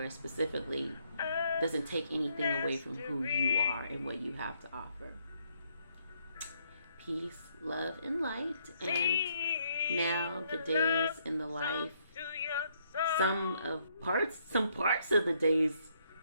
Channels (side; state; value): both; inverted; correlation -0.72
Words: specifically doesn't take anything away from who you are and what you have to offer. Peace, love, and light. And now the days in the life, some parts of the days